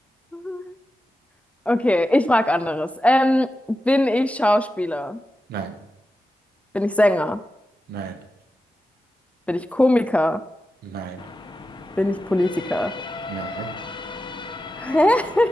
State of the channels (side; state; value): both; normal; correlation 0.91